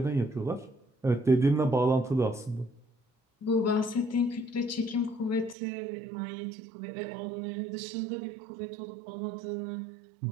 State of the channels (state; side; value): drops out; left; at 5.6 s